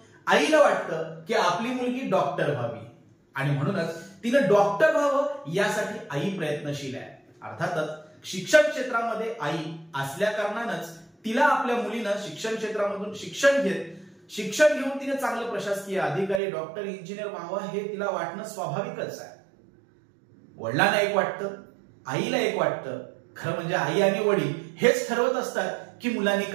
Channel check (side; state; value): left; drops out; at 16.4 s